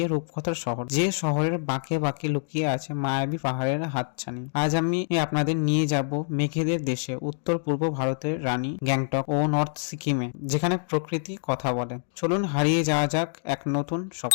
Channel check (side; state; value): right; silent; digital silence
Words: রূপকথার শহর, যে শহরের বাঁকে বাঁকে লুকিয়ে আছে মায়াবী পাহাড়ের হাতছানি। আজ আমি আপনাদের নিয়ে যাব মেঘেদের দেশে, উত্তর পূর্ব ভারতের রানী গ্যাংটক ও নর্থ সিকিমে, যেখানে প্রকৃতি কথা বলে। চলুন হারিয়ে যাওয়া যাক এক নতুন